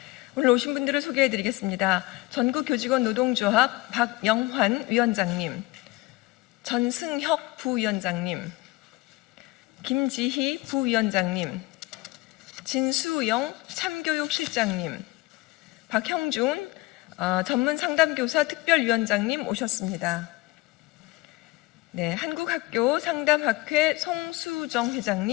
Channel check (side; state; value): right; quieter; 20.6 dB